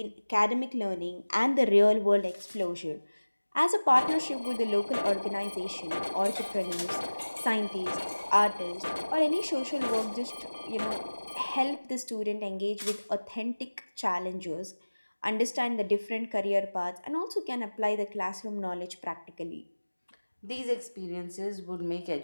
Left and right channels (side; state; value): both; inverted; correlation -1.00